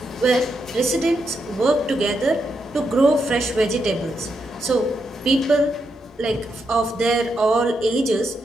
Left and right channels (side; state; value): both; normal; correlation 0.83